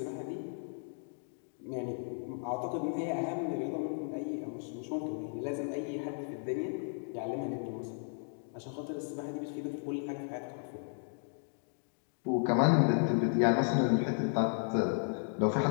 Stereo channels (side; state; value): right; silent; digital silence